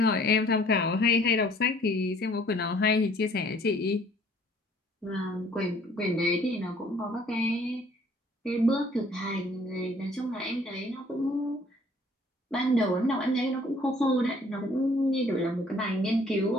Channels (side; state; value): both; normal; correlation 0.58